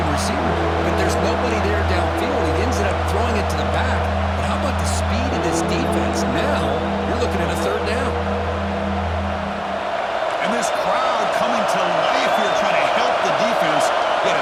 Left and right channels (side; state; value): both; identical; correlation 1.00